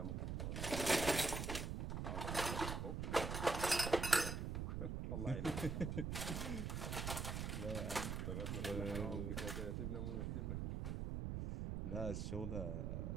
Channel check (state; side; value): noise; right; rumble, 2 dB below the sound